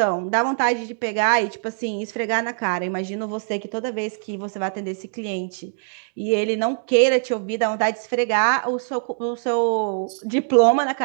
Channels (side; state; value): left; silent; digital silence